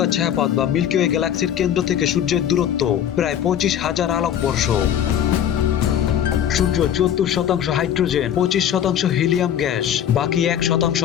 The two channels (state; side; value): quieter; right; 9.8 dB